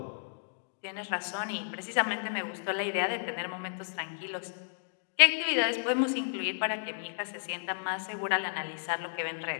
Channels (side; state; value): right; silent; digital silence